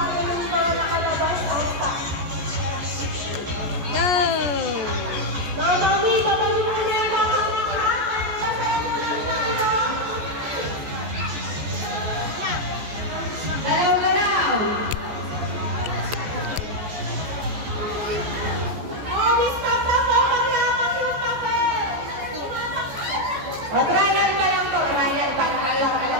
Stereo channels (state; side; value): late; left; 14 ms